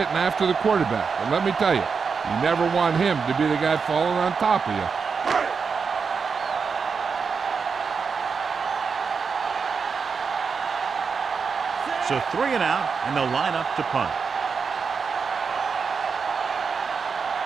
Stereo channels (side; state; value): left; quieter; 5.6 dB